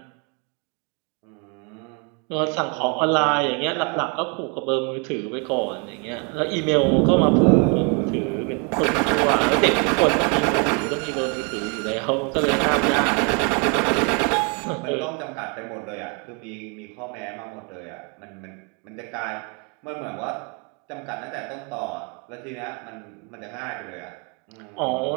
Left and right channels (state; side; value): quieter; left; 34.8 dB